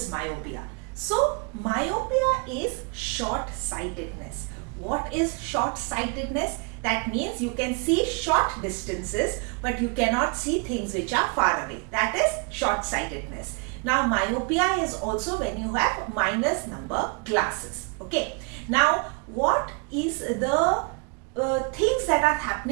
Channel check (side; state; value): left; quieter; 32.6 dB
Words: myopia. So, myopia is short-sightedness. What is short-sightedness? That means you can see short distances but you cannot see things which are far away. That is short-sightedness. Now, myopia is also when you have minus number glasses. Okay. Now, what is the things that are